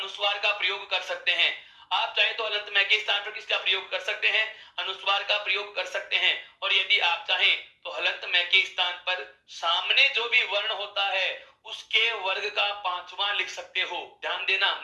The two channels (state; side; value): identical; both; correlation 1.00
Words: का प्रयोग कर सकते हैं। आप चाहें तो हलंत मैं के स्थान पर किसका प्रयोग कर सकते हैं? अनुस्वार का प्रयोग कर सकते हैं। और यदि आप चाहें तो हलंत मैं के स्थान पर सामने जो भी वर्ण होता है उसके वर्ग का 5वां लिख सकते हो। ध्यान देना,